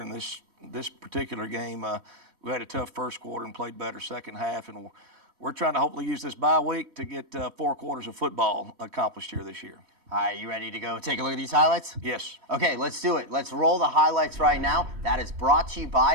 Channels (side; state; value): left; late; 3.1 ms